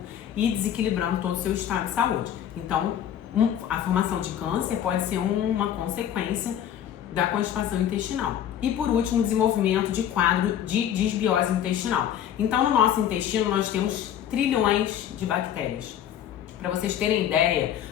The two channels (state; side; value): quieter; right; 10.2 dB